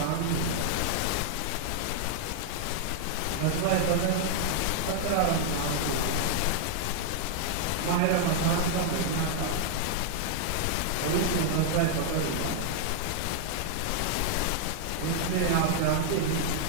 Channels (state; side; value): different; both; correlation -0.01